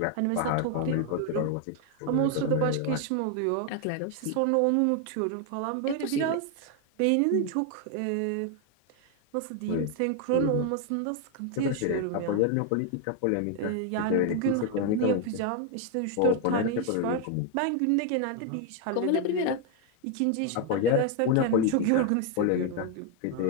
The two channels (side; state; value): both; different; correlation 0.01